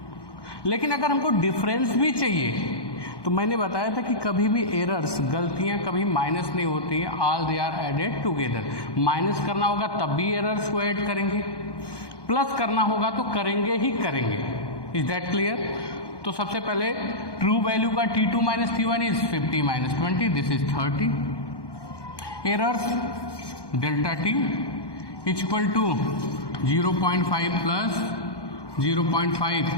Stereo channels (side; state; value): right; late; 1.2 ms